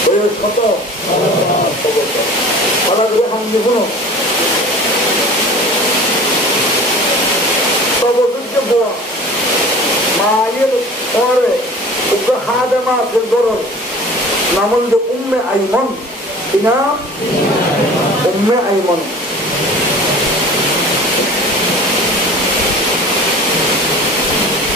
বয়স কত মায়ের পরে হাদেমা গরর নাম হল উম্মে আইমন কিনা উম্মে আইমন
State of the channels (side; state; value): both; normal; correlation 0.41